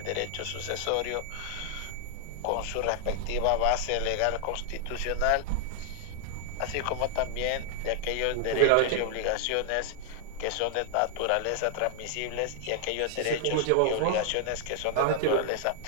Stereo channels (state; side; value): different; both; correlation 0.00